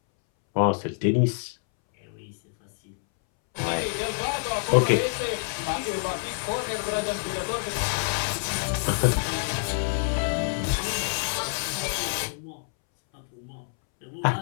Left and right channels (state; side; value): silent; right; 60 dB below the other